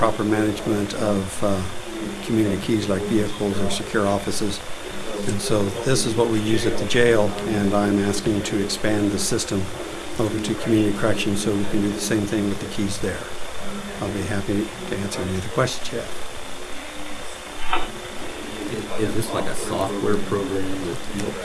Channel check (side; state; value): both; identical; correlation 1.00